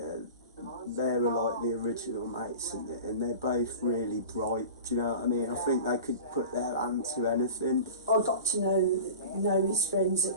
they were like the original mates in it, and they're both really bright, do you know what I mean? I think they could put their hand to anything. I got to know his friends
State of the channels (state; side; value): inverted; both; correlation -0.36